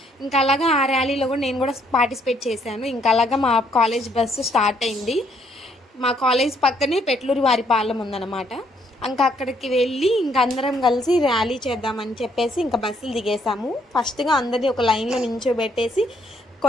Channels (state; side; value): normal; both; correlation 0.69